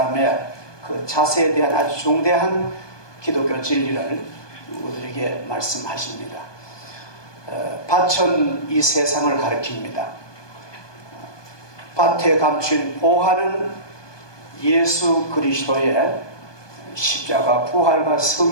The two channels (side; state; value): right; late; 1.2 ms